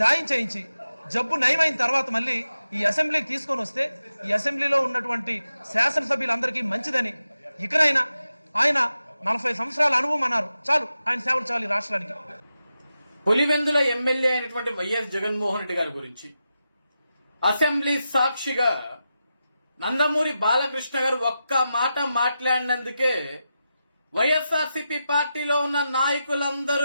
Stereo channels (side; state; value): both; inverted; correlation -0.90